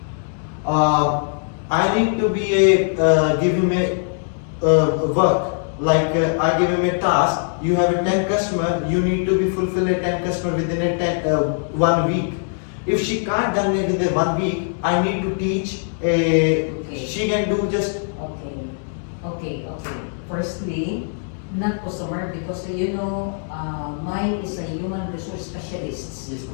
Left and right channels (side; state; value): right; silent; digital silence